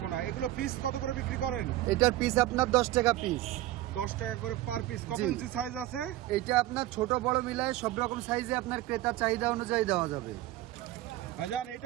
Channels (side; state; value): left; quieter; 15.3 dB